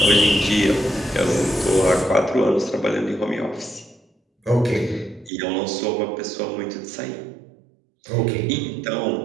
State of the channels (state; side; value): drops out; left; at 5.3 s